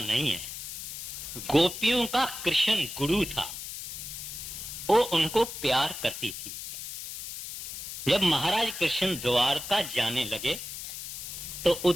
नहीं है। गोपियों का कृष्ण गुरु था, वो उनको प्यार करती थी। जब महाराज कृष्ण द्वारका जाने लगे तो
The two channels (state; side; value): noise; left; hiss, 8 dB below the sound